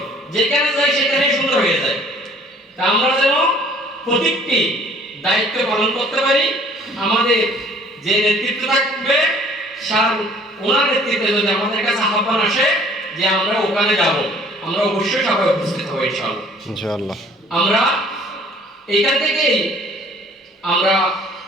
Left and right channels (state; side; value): normal; both; correlation 0.55